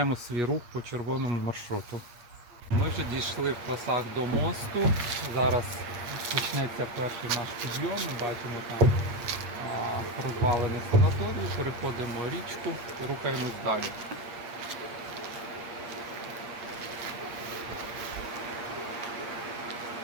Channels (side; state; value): left; late; 8.5 ms